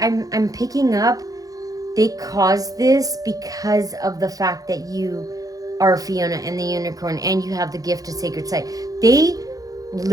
picking up they caused this because of the fact that you are Fiona and the Unicorn and you have the gift of sacred sight. They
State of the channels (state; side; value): late; left; 0.17 ms